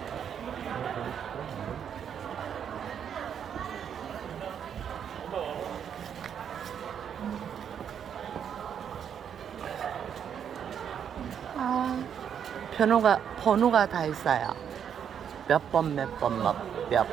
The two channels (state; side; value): quieter; left; 8.3 dB